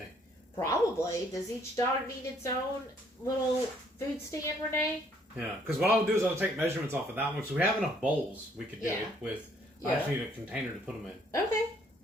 Probably. Does each dog need its own little food stand, Renee? Yeah. Because what I'll do is I'll take measurements off of that one. So we have enough bowls we could do it with. Yeah. I just need a container to put them in. Okay.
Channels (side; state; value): both; normal; correlation 0.65